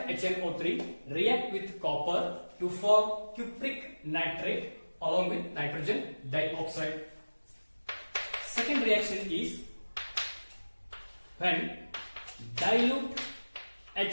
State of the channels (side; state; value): both; inverted; correlation -1.00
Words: HNO3 react with copper to form cupric nitrate along with nitrogen dioxide. Second reaction is when dilute